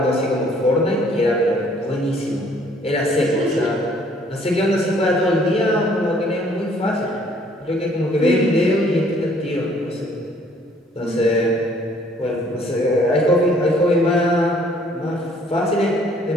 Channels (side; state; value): both; normal; correlation 0.60